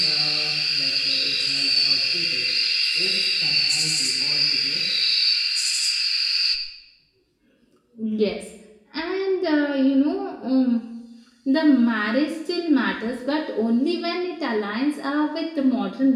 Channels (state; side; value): identical; both; correlation 1.00